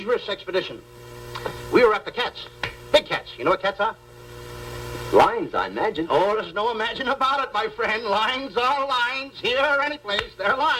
expedition. We were after cats. Big cats. You know what cats are? Lions, I imagine. Oh, there's no imagine about it, my friend. Lions are lions. Here or any place, they're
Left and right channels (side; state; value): both; identical; correlation 1.00